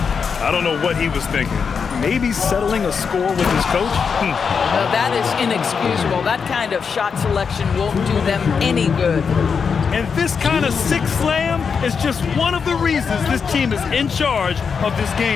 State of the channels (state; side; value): quieter; right; 6.0 dB